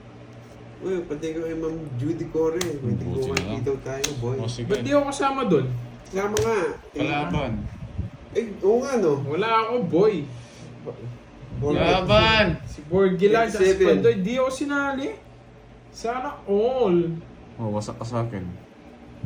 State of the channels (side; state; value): both; identical; correlation 1.00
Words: Uy, pati ko kay Ma'am Judy Core. May Buti tiguan na lang. dito tayo, boy. O, sige. Ba't di ako kasama doon? Sama nga. Kalaban. Oo nga, no? Wala ako, boy. Laban! Si Borgi lang, sa 27. Pandoy, di ako sinali. Sana all. Oh, wasak ka sa akin.